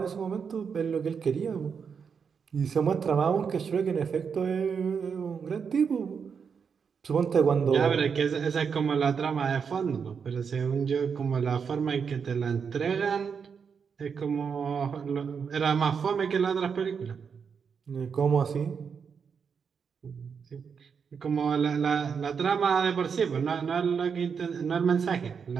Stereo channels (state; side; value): quieter; left; 6.3 dB